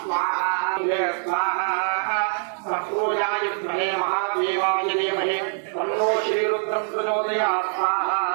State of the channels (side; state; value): left; silent; digital silence